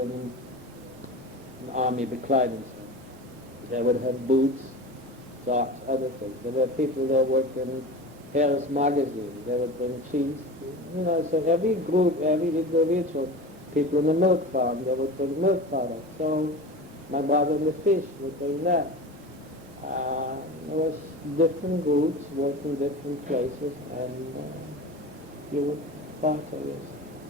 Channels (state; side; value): normal; both; correlation 0.31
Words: army bekleidung. They would have boots, socks, other things. There were people that worked in Paris magazine. They would bring cheese. You know, so every group, every individual, people in the milk farm, they would bring milk products. So my brother in the fish would bring that. There was different groups working different places, and you would barter this.